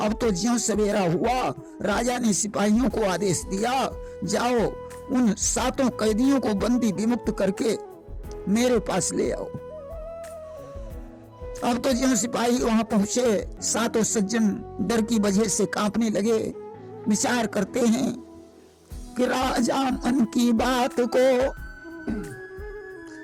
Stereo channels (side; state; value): both; identical; correlation 1.00